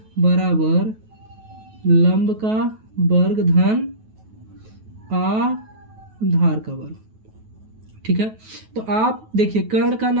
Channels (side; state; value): left; late; 9.2 ms